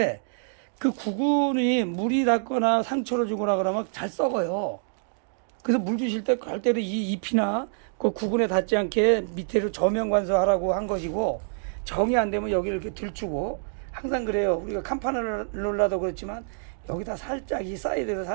그 구근이 물이 닿거나 상처를 주거나 그러면 잘 썩어요. 그래서 물 주실 때 절대로 이 잎이나 그 구근에 닿지 않게 밑에로 저면 관수하라고 한 것이고, 정이 안 되면 여기를 이렇게 들추고, 항상 그래요. 우리가 간판을 놀라도 그렇지만 여기다 살짝 이 사이드에서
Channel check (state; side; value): silent; left; digital silence